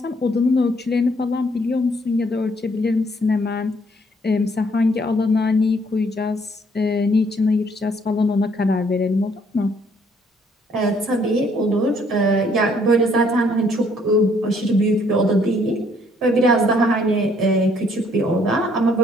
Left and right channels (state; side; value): normal; both; correlation 0.65